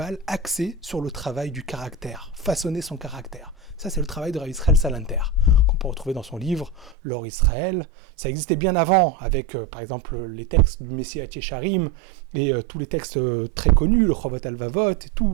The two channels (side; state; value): left; drops out; at 7.0 s